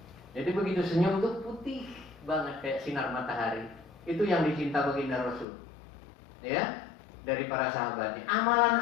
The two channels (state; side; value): drops out; right; at 5.5 s